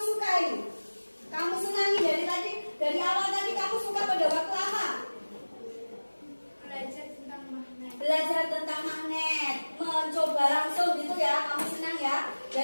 sukai? Kamu senangi dari awal tadi kamu suka pada waktu apa? Belajar tentang magnet, mencoba langsung gitu ya, kamu senang ya,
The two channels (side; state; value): both; inverted; correlation -1.00